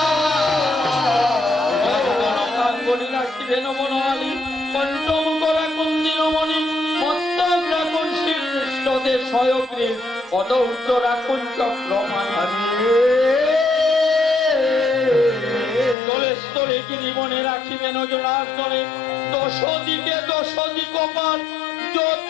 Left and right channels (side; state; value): right; drops out; at 16.0 s